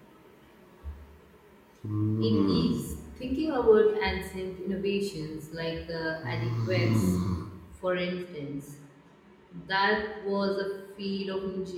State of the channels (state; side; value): identical; both; correlation 1.00